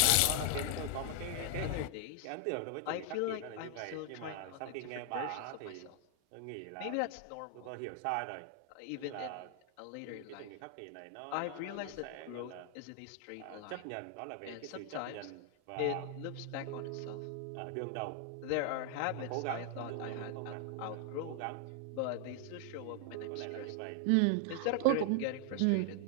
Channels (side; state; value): both; different; correlation 0.00